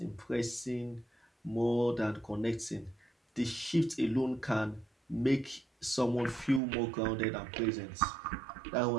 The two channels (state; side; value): drops out; left; at 6.6 s